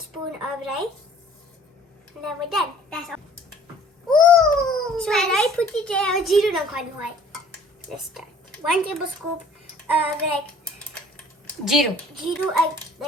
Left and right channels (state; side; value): normal; both; correlation 0.53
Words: of rice. And then we're done. That's all. Ooh! So I put it there. Zero નાખવાનું હોય. Let's start. 1 tablespoon of જીરું add